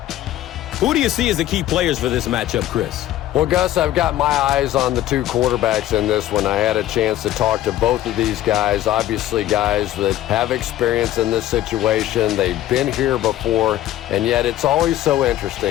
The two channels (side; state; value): right; quieter; 13.5 dB